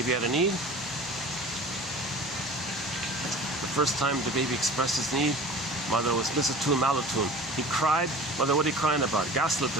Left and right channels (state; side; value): normal; both; correlation 0.40